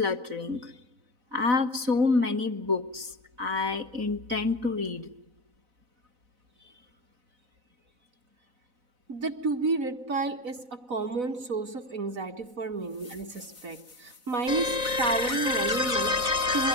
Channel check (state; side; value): late; left; 4.0 ms